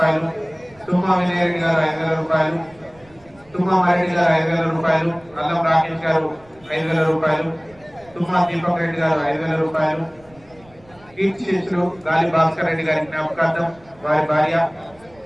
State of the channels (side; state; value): right; noise; rumble, 27 dB below the sound